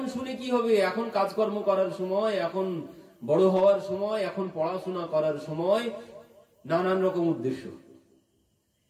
শুনে কি হবে? এখন কাজকর্ম করার সময়, এখন বড় হওয়ার সময়, এখন পড়াশোনা করার সময়, নানান রকম উদ্দেশ্য।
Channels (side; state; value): both; identical; correlation 1.00